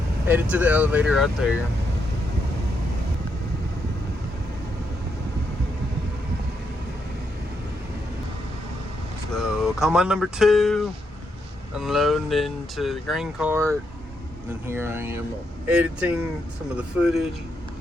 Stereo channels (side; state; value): both; normal; correlation 0.80